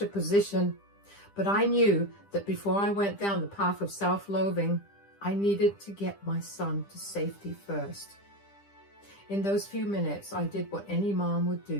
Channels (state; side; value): late; right; 10 ms